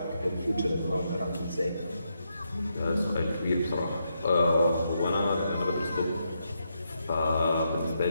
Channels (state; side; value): inverted; both; correlation -0.82